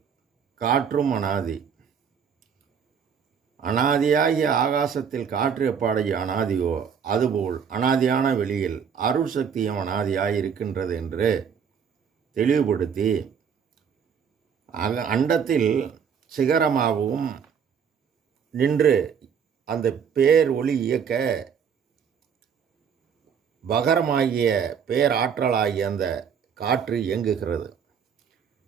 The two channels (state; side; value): quieter; left; 7.2 dB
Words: காற்றும் அனாதி. அனாதியாகிய ஆகாசத்தில் காற்று எப்பாடைய அனாதியோ அதுபோல் அனாதியான வெளியில் அருள் சக்தியும் அனாதியாய் இருக்கின்றது என்று தெளிவுபடுத்தி அண்டத்தில் சிகரமாகவும் நின்று அந்த பேர் ஒளி இயக்க பகரமாகிய பேராற்றலாகிய அந்த காற்று இயங்குகிறது.